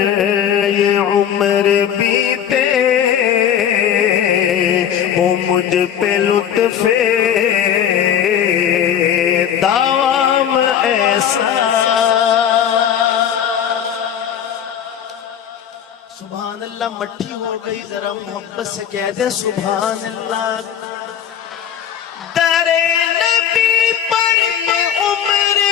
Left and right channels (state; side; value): quieter; right; 9.2 dB